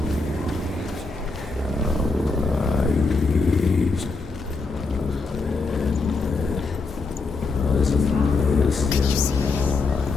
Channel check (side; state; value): right; quieter; 3.9 dB